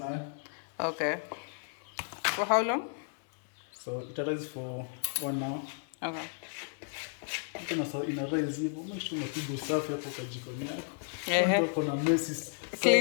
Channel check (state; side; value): silent; right; 56 dB below the other